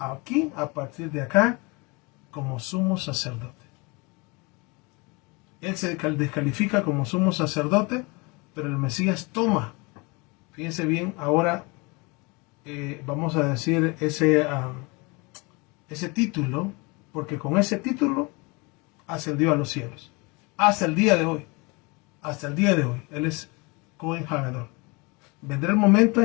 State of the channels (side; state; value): right; quieter; 27.6 dB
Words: a partir de acá, como sumo sacerdote. Él se descalifica como sumo sacerdote, pero el Mesías toma, fíjense bien, ahora vamos a decir ese título, porque con ese título ascendió a los cielos. Hasta el día de hoy, Él es Cohen Hagadol. Vendrá el momento